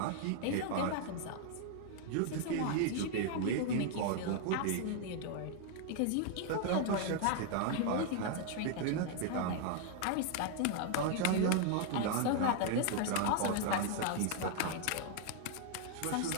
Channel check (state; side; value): different; both; correlation 0.00